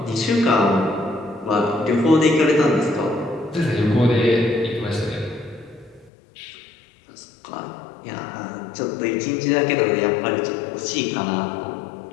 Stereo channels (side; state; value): right; drops out; at 6.1 s